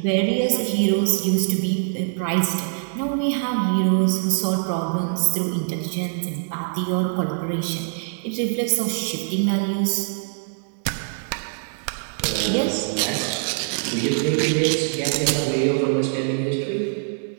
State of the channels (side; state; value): left; silent; digital silence